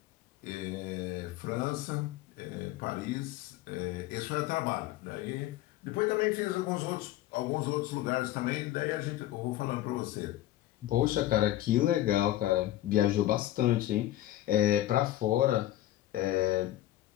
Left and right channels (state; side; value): quieter; right; 14.4 dB